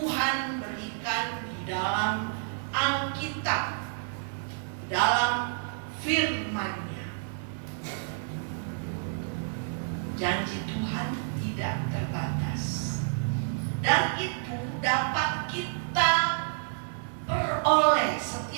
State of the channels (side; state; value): left; silent; 58 dB below the other